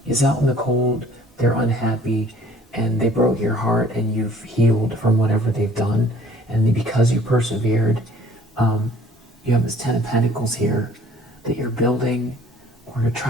is out in the cold, they're unhappy, and they broke your heart, and you've healed from whatever they've done. And because you persevered, you have this 10 of Pentacles here that you're building or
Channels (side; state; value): both; normal; correlation 0.54